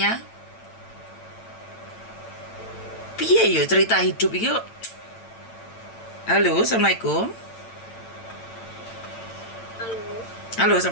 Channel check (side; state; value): right; late; 8.9 ms